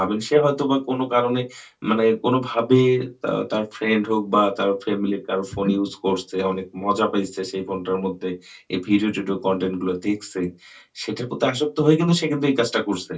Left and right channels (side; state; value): both; identical; correlation 1.00